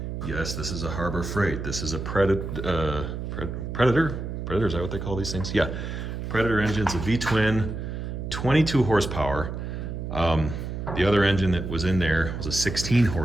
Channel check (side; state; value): right; noise; hum, 5 dB below the sound